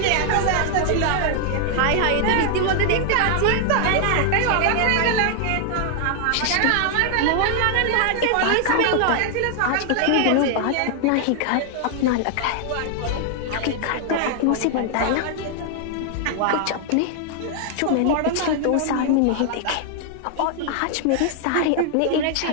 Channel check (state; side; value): different; both; correlation 0.00